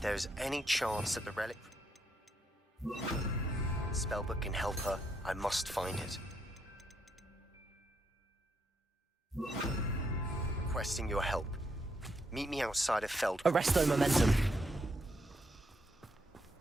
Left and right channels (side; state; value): both; normal; correlation 0.77